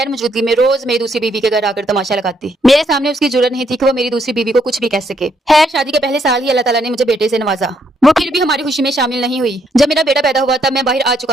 मौजूदगी में रोज मेरी दूसरी बीवी के घर आकर तमाशा लगाती। मेरे सामने उसकी जुर्रत नहीं थी कि वो मेरी दूसरी बीवी को कुछ भी कह सके। खैर, शादी के पहले साल ही अल्लाह ताला ने मुझे बेटे से नवाजा। वो फिर भी हमारी खुशी में शामिल नहीं हुई। जब मेरा बेटा पैदा हुआ तब मैं बाहर आ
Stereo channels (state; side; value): normal; both; correlation 0.73